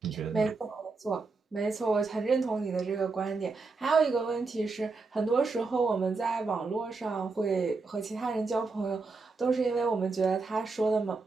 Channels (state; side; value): quieter; left; 4.0 dB